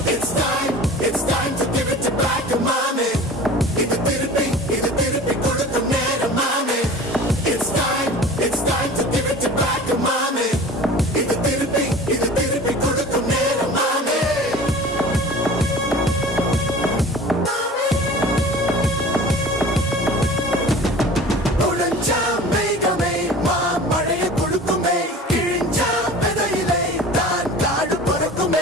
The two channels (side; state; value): both; normal; correlation 0.41